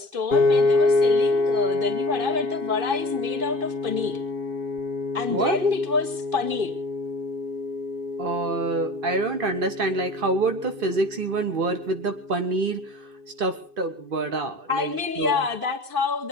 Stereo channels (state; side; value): late; left; 2.5 ms